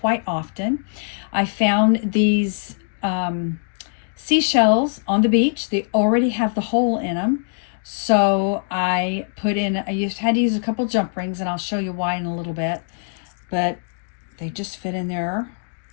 often. I found these seashells on the beach. They already have the hole in them. So I had to use a couple jump rings, and I'll show you why in a little bit. But they just fit in there,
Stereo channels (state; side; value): silent; right; digital silence